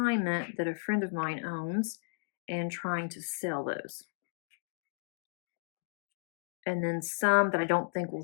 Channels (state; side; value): silent; right; digital silence